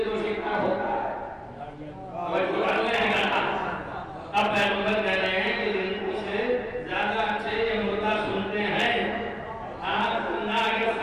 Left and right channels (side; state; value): both; identical; correlation 1.00